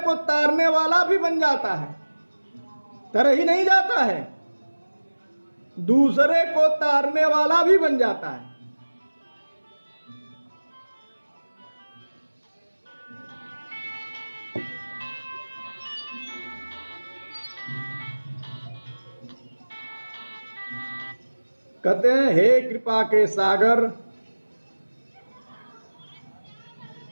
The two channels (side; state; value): both; inverted; correlation -1.00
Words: को तारने वाला भी बन जाता है, तर ही नहीं जाता है, दूसरे को तारने वाला भी बन जाता है। कहते हैं हे कृपा के सागर,